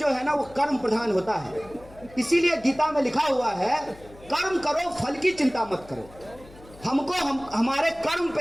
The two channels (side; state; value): left; noise; hum, 22 dB below the sound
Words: है ना वो कर्म प्रधान होता है, इसीलिए गीता में लिखा हुआ है कर्म करो फल की चिंता मत करो। हमको हमारे कर्म